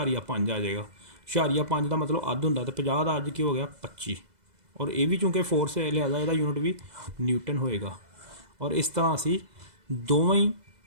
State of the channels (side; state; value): left; late; 2.0 ms